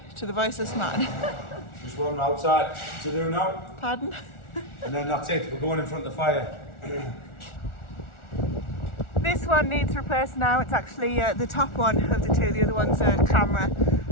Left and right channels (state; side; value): late; right; 1.4 ms